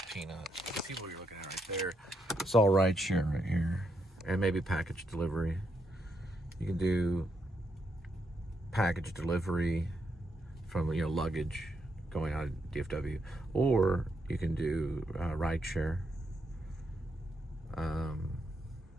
peanuts. The people you're looking at right there. It's all rideshare right here. And maybe package delivery. You can do package delivery from, you know, luggage going out of DFW, or you can do rideshare,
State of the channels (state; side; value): normal; both; correlation 0.79